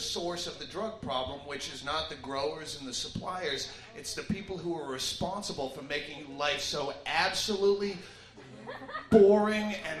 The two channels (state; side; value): identical; both; correlation 1.00